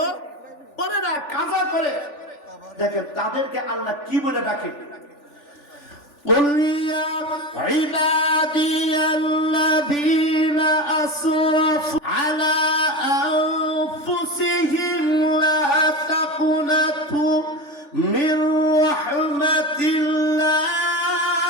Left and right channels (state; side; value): late; right; 3.4 ms